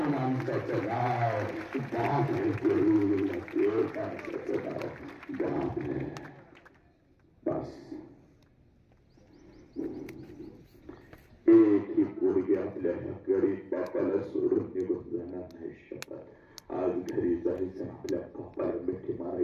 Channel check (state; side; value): identical; both; correlation 1.00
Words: माणसाचं नाव बाप आहे पोरी. या देव माणसाचं नाव बाप आहे. बस एक ही पोरगी आपल्या गरीब बापाला सोडून निघून जाणार नाही शकत. आज घरी जायचं, आपल्या बापाला मिठी